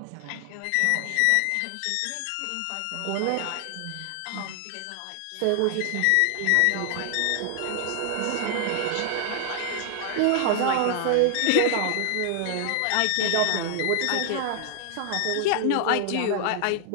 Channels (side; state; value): both; different; correlation 0.00